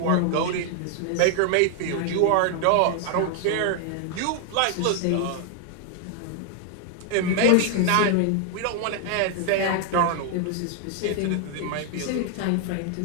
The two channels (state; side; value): different; both; correlation 0.00